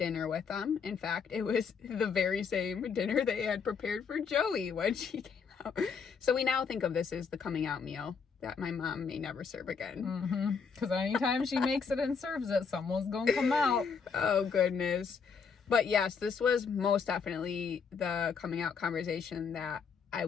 with them. In fact, it was the very same dinner they had prepared for Joey when she came out. So we now think of this as the coming out meal that my mom may never serve again. Because anytime she makes it and serves it, someone's gonna come out. Oh, goodness. But yes, this was most definitely the coming out conversation that I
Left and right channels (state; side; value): quieter; right; 5.9 dB